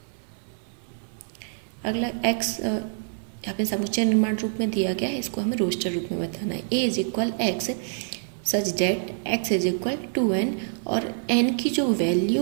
अगला x यहाँ पे समुच्चय निर्माण रूप में दिया गया है, इसको हमें रोस्टर रूप में बताना है। a is equal x such that x is equal 2n, और n की जो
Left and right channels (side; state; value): left; silent; digital silence